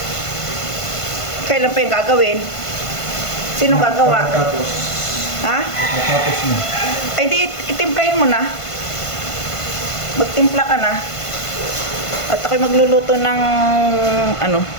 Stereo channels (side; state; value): right; late; 1.5 ms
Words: Kailan pa yung gagawin? Sino gagawa? Tapos. Ha? Tapos mo. Ay, di, itimplahin mo na. Magtimpla ka na. At ako'y magluluto ng, ano,